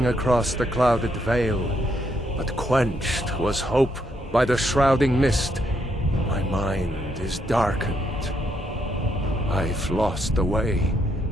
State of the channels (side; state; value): both; normal; correlation 0.75